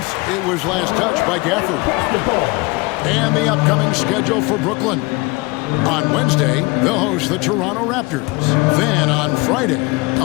It was last touched by Gafford. And the upcoming schedule for Brooklyn. On Wednesday, they'll host the Toronto Raptors. Then on Friday,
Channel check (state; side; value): quieter; right; 25.3 dB